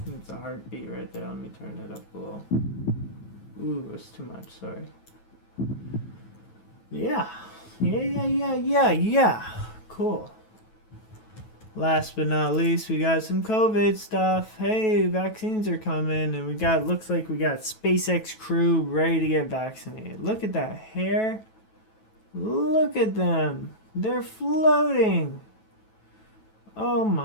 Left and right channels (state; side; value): late; right; 15 ms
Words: That's a heartbeat right there. Let me turn it up a little. Ooh, that's too much. Sorry. Yeah. Cool. Last but not least, we got some COVID stuff. Hey, vaccines are coming, and looks like we got SpaceX crew ready to get vaccinated. Look at that hair. Look at them. They're floating. Oh